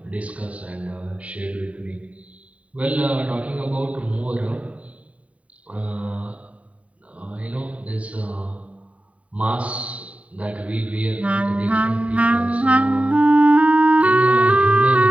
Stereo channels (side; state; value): left; late; 0.066 ms